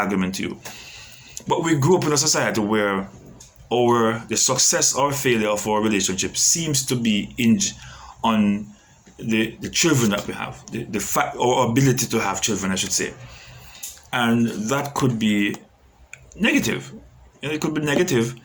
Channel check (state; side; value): identical; both; correlation 1.00